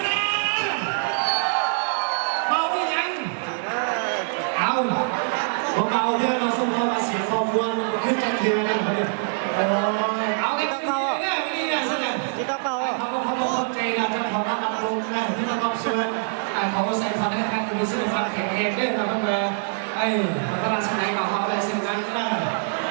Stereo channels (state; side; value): silent; left; 63 dB below the other